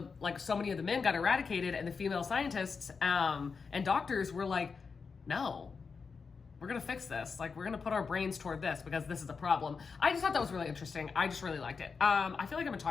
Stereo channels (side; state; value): right; quieter; 5.2 dB